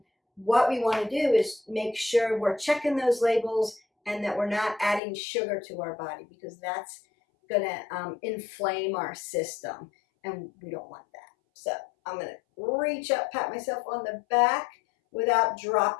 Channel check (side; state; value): right; drops out; at 5.0 s